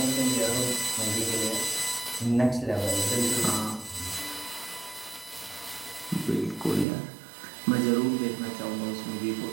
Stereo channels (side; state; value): left; drops out; at 6.9 s